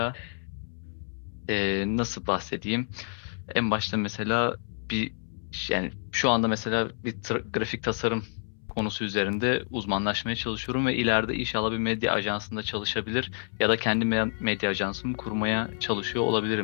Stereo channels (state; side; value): silent; right; 59 dB below the other